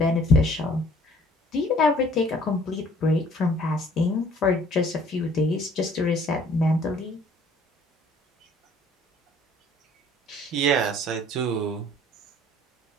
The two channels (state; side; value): normal; both; correlation 0.56